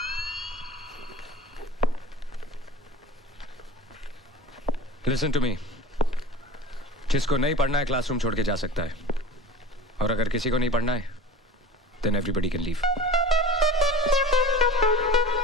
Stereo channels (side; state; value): both; normal; correlation 0.36